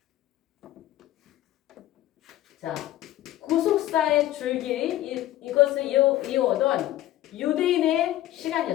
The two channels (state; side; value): quieter; right; 14.3 dB